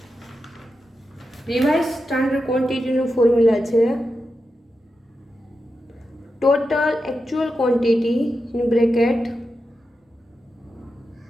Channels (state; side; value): normal; both; correlation 0.89